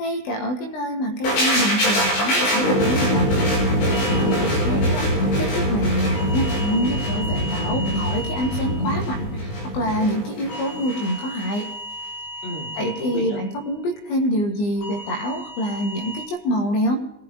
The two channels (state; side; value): late; right; 20 ms